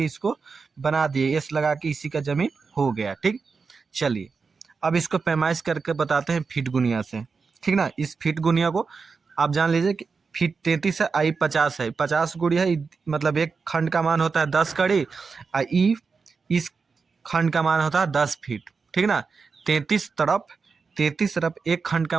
इसको बना दिए, एस लगा के इसी का जमीन हो गया। ठीक, चलिए अब इसको पैमाइश करके बताते हैं फीट गुनिया से। ठीक ना, इस फीट गुनिया को आप जान लीजिए कि फीट 33 है, आई 50 है, 50 गुड़िया मतलब एक खंड का मान होता है 10 कड़ी, और ई इस खंड का मान होता है 10 फीट। ठीक ना, 33 तरफ एक खंड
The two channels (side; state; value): left; quieter; 4.9 dB